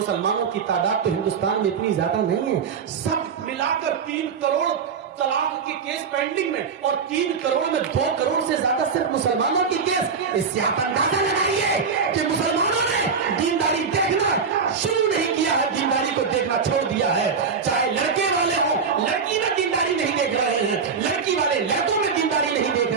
کی تعداد تو ہندوستان میں اتنی زیادہ نہیں ہے, سب ملا کر 3 کروڑ طلاق کے کیس پینڈنگ میں, اور 3 کروڑ میں 2 کروڑ سے زیادہ صرف مسلمانوں کے کیس. اس سے آپ اندازہ لگائیے کہ مسلمانوں نے دینداری دیکھنا شروع نہیں کیا ہے, دینداری کو دیکھنا چھوڑ دیا ہے. چاہے لڑکے والے ہوں, لڑکی میں دینداری نہیں دیکھ رہے ہیں, لڑکی والے لڑکوں میں دینداری نہیں دیکھ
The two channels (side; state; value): left; quieter; 5.9 dB